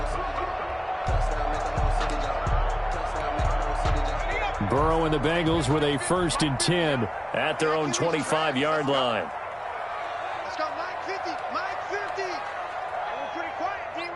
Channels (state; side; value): identical; both; correlation 1.00